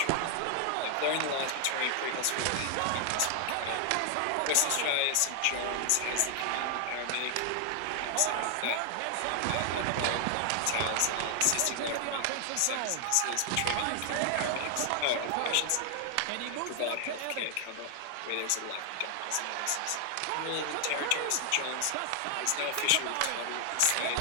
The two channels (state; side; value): different; both; correlation 0.00